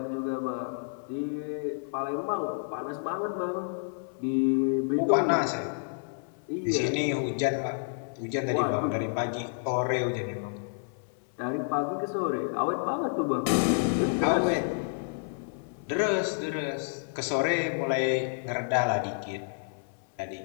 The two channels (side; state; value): right; silent; 56 dB below the other